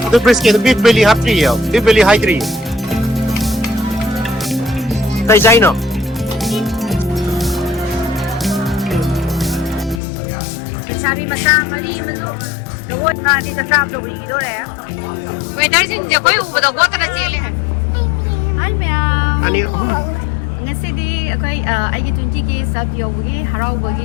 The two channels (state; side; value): drops out; right; at 10.0 s